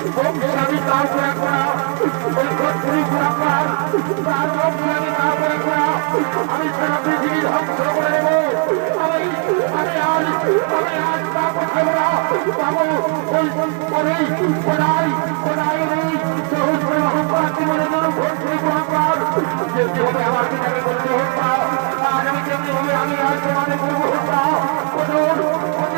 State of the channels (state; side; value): quieter; left; 37.7 dB